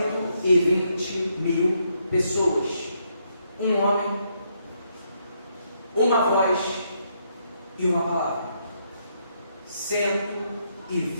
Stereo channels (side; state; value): both; inverted; correlation -0.76